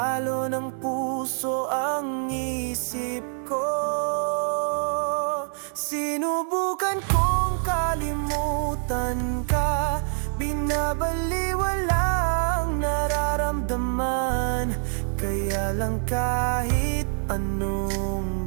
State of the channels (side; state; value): left; silent; 61 dB below the other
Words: ng puso ang isip ko. Sinubukan kong kalimutan ka, binabaliwala ang nararamdaman. Kaya lang kahit